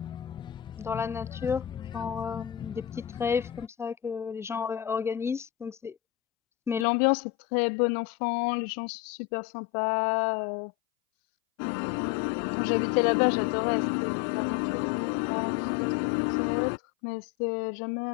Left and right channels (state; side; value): drops out; right; at 6.9 s